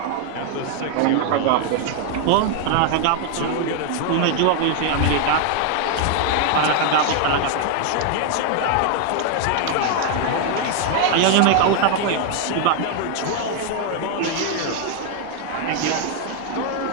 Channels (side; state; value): both; different; correlation 0.00